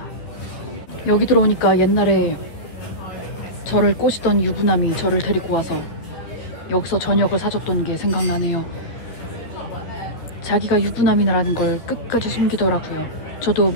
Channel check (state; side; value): late; right; 13 ms